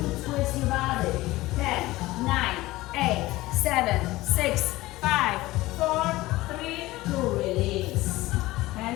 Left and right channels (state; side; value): quieter; right; 18.5 dB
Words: to twist your body. 10, 9, 8, 7, 6, 5, 4, 3, 2. Release.